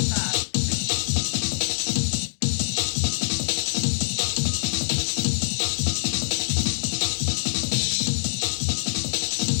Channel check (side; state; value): right; silent; digital silence